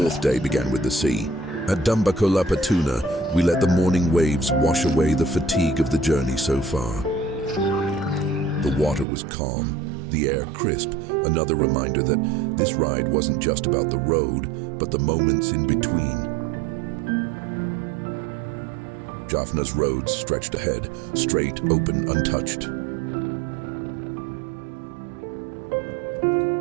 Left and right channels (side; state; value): left; drops out; at 9.1 s